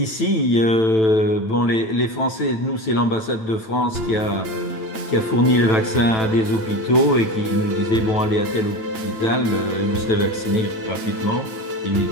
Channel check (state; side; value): late; right; 9.1 ms